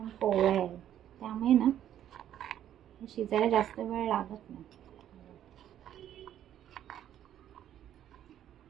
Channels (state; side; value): quieter; left; 11.0 dB